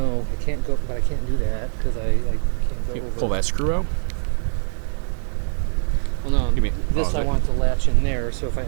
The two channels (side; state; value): left; silent; 56 dB below the other